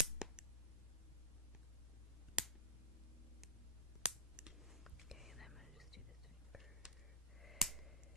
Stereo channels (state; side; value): normal; both; correlation -0.14